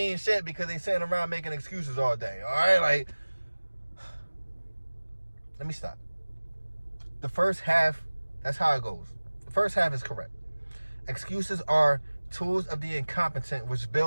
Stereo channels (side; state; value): both; inverted; correlation -1.00